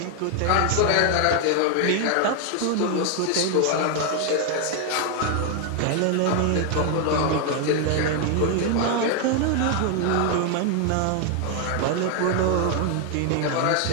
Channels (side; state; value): both; different; correlation 0.00